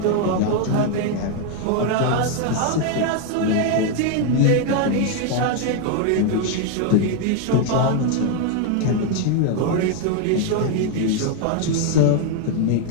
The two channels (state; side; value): different; both; correlation 0.01